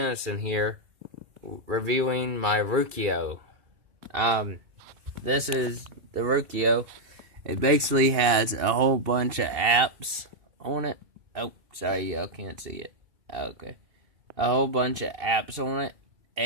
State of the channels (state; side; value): late; left; 2.7 ms